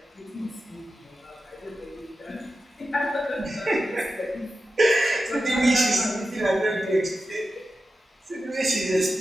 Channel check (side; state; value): both; normal; correlation 0.92